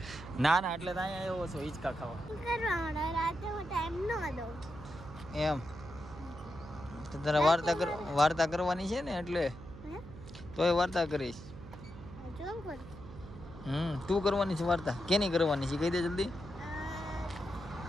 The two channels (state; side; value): noise; right; hum, 15 dB below the sound